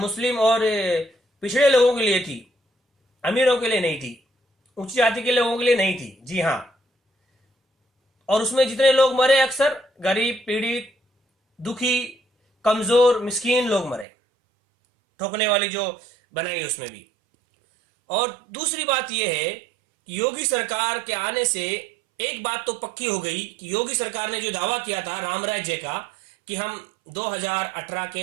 और पिछड़े लोगों के लिए थी, अमीरों के लिए नहीं थी, उच्च जाति के लोगों के लिए नहीं थी। जी हाँ। और उसमें जितने लोग मरे अक्सर गरीब, पीड़ित, दुखी, कमजोर, मिस्कीन लोग मरे, ठोकने वाली जो बनाई उसमें भी। और दूसरी बात यह है कि योगी सरकार के आने से एक बात तो पक्की हो गई कि योगी सरकार ने जो दावा किया था राम राज्य का कि हम 2018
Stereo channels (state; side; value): drops out; left; at 14.1 s